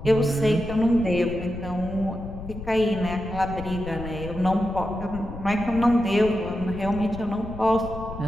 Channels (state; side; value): noise; left; rumble, 11 dB below the sound